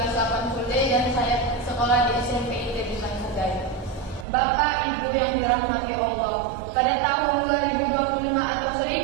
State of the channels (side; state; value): left; drops out; at 4.2 s